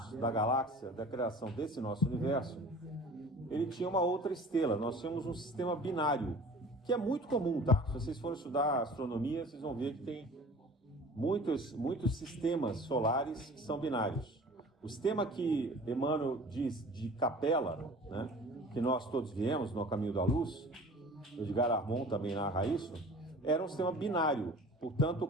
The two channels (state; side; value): normal; both; correlation 0.44